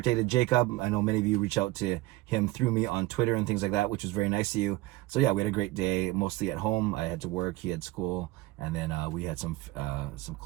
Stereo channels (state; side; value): quieter; left; 18.6 dB